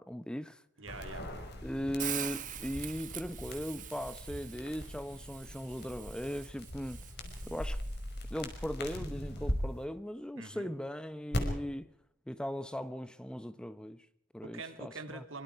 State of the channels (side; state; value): both; normal; correlation 0.84